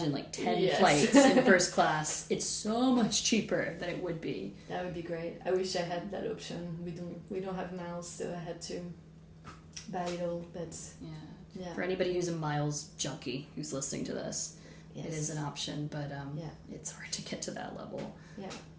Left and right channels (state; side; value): identical; both; correlation 1.00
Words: like 10 flights in first class. It's so much cheaper than it would be. That would be great. I wish I had that option. We don't have miles, so I had to buy it all. But yeah. For anybody who's a miles junkie who's listening to this, yes. It is an option, but it's hard to get to that level. Yeah.